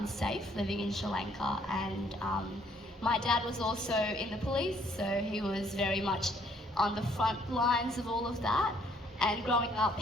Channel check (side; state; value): both; normal; correlation 0.65